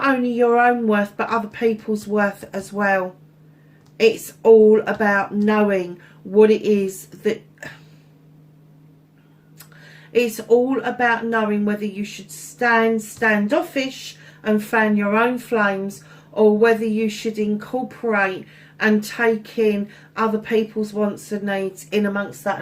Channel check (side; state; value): both; identical; correlation 1.00